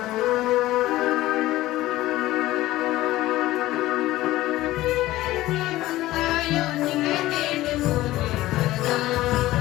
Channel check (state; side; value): quieter; right; 16.5 dB